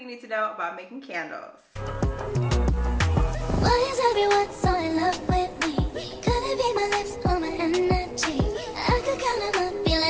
you need to know about making candles. Why is everyone so in love with me? Could it be my lips or my energy? I could count them up, be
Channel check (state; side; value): identical; both; correlation 1.00